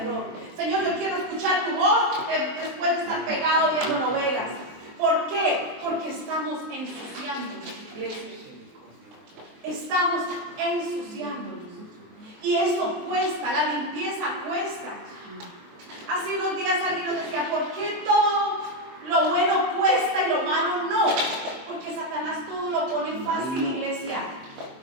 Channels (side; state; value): left; late; 23 ms